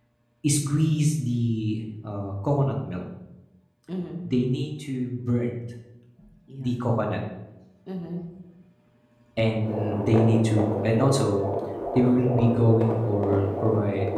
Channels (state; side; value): identical; both; correlation 1.00